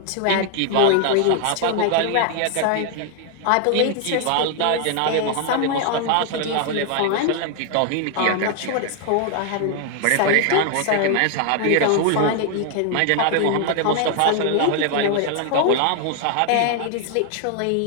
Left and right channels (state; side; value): different; both; correlation 0.00